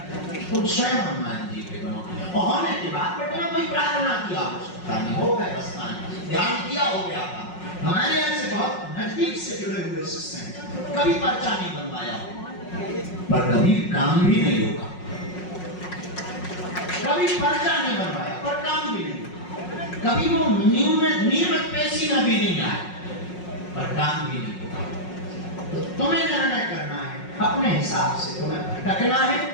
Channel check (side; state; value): right; late; 5.5 ms